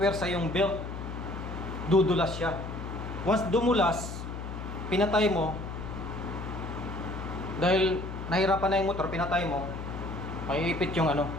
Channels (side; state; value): left; noise; hum, 8 dB below the sound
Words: yung belt, dudulas siya. Once dumulas, pinatay mo, dahil nahirapan na yung motor, pinatay mo, maiipit yung